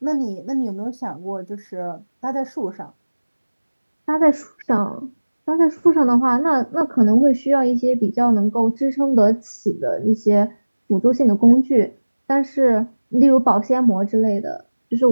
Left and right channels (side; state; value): both; inverted; correlation -1.00